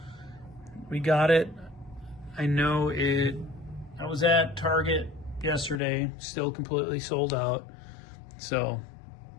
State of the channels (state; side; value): drops out; right; at 5.8 s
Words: We got it. I know it. I was at Target yesterday. Still completely sold out. So